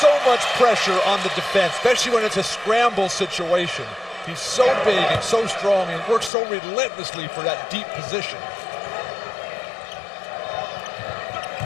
much pressure on the defense, especially when it's a scramble situation. He's so big and so strong and works so relentlessly for that deep position.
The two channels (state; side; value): drops out; right; at 6.3 s